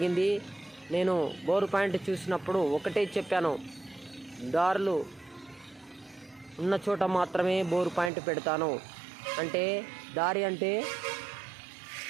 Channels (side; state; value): left; drops out; at 8.1 s